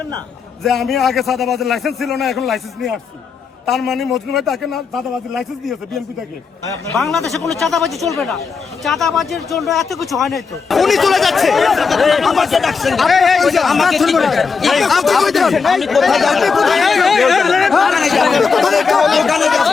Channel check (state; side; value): quieter; right; 5.3 dB